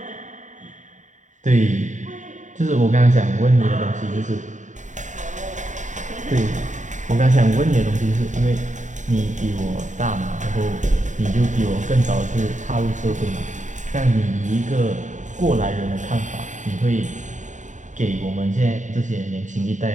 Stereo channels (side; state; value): left; late; 0.36 ms